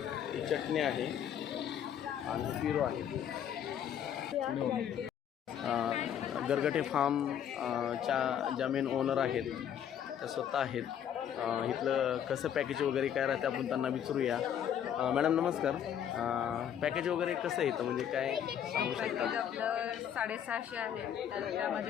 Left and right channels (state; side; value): quieter; right; 9.4 dB